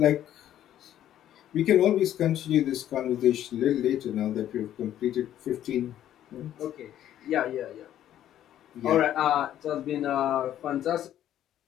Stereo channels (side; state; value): right; quieter; 11.6 dB